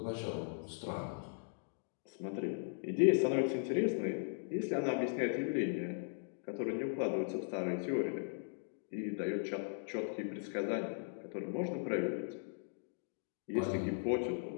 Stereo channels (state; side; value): silent; right; digital silence